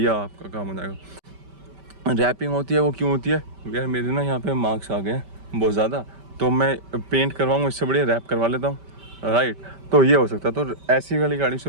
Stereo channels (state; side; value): late; left; 5.1 ms